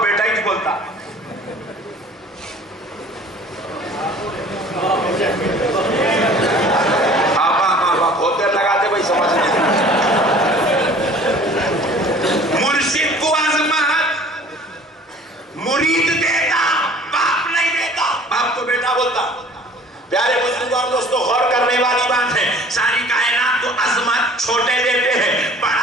ہی بولتا۔ بہت دیر لگاتے بھائی سمجھ نہیں۔ مرشد کو عظمت مرید دیتا، باپ نہیں دیتا، باپ تو بیٹا بولتا۔ پیارے بزرگوں اور دوستوں، غور کرنے والی بات ہے، ساری کائنات کو عظمت چھوٹے دیتے ہیں،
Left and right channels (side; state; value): both; normal; correlation 0.49